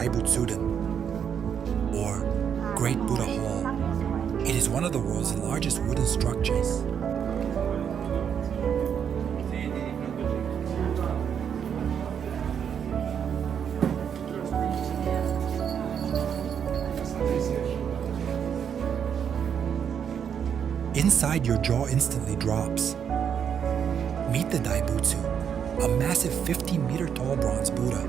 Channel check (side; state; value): left; quieter; 7.9 dB